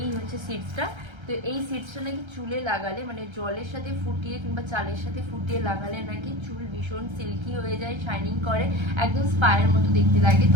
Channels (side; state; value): left; late; 1.3 ms